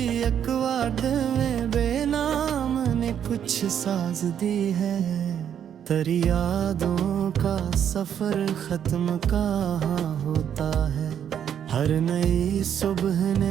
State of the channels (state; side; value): quieter; left; 9.0 dB